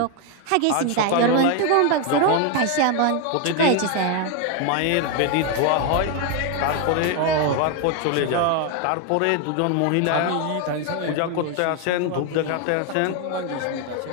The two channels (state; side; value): different; both; correlation 0.01